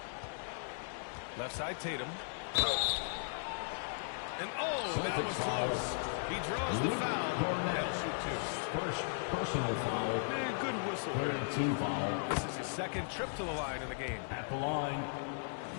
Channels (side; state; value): right; silent; 53 dB below the other